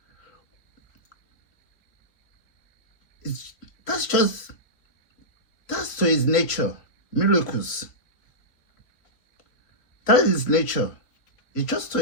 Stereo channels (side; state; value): right; late; 3.2 ms